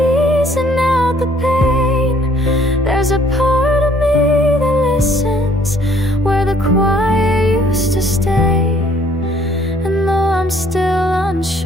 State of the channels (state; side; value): normal; both; correlation 0.62